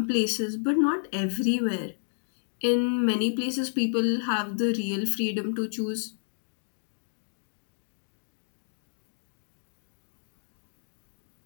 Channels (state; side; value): silent; right; digital silence